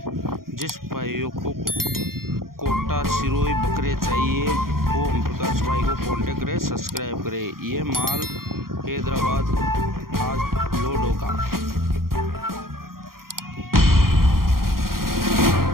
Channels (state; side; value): late; left; 0.92 ms